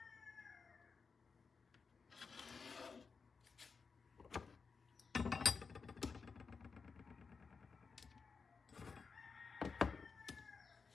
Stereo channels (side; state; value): right; quieter; 5.1 dB